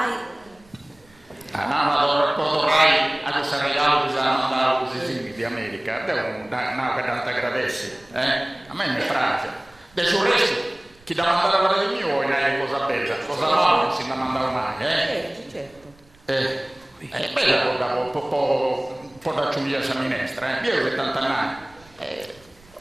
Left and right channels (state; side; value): noise; right; rumble, 28 dB below the sound